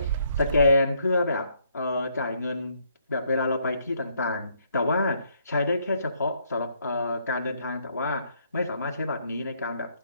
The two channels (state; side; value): inverted; both; correlation -0.70